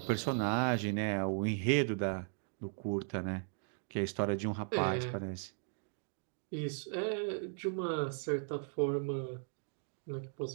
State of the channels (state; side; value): silent; left; 53 dB below the other